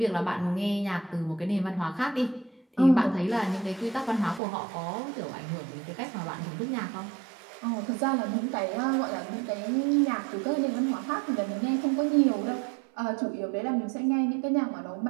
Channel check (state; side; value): drops out; left; at 4.4 s